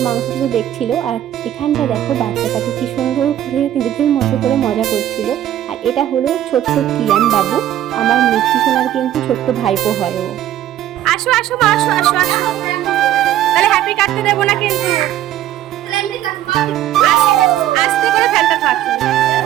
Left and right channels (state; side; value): quieter; left; 12.4 dB